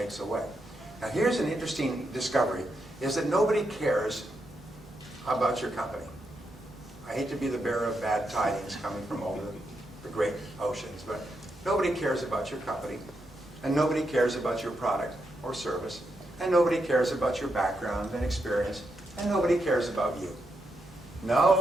away? Now here's an interesting discovery, is that nobody cares about your company. I hate to be the bearer of bad tidings coming from over the great oceans, but nobody cares about your company, and nobody cares about your product or service, and nobody cares about your background and experience, and nobody cares about you.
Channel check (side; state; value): both; normal; correlation 0.83